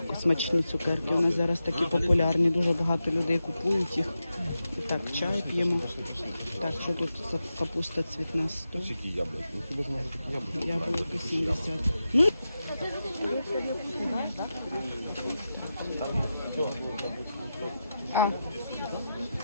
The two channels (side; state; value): both; inverted; correlation -0.90